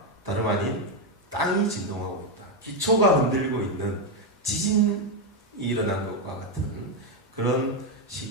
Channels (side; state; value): both; normal; correlation 0.04